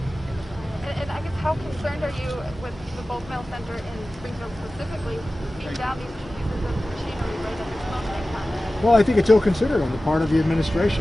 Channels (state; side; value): normal; both; correlation 0.96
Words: And I guess how concerned are you with the bulk mail center in Springfield specifically being down these 2 pieces of machinery right at this moment in time? Well, I think it's ill-considered on the part of the